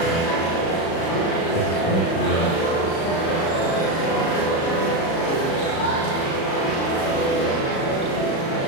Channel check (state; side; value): late; right; 36 ms